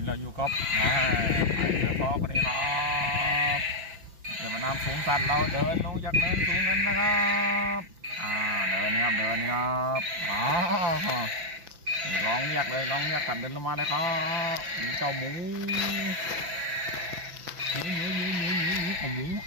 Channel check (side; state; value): left; late; 6.0 ms